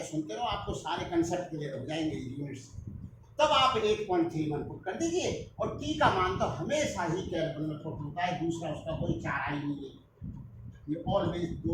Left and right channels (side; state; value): both; identical; correlation 1.00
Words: सुनते रहो, आपको सारे कंसेप्ट क्लियर हो जाएंगे यूनिट्स। तब आप 8.31 पुट कर दीजिए, और टी का मान तो हमेशा ही केल्विन में पुट होता है, दूसरा उसका कोई चारा ही नहीं है, ये ऑलवेज